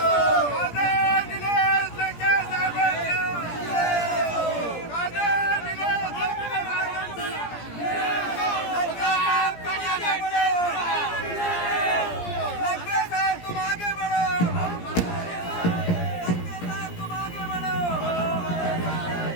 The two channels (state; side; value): late; right; 17 ms